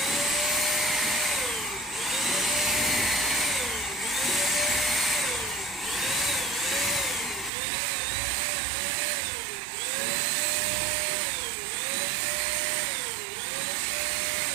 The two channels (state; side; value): drops out; left; at 7.5 s